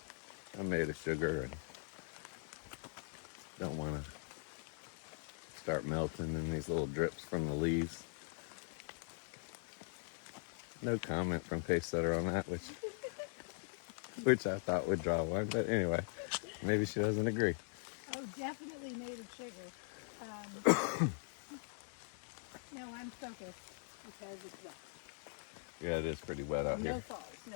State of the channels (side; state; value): right; silent; digital silence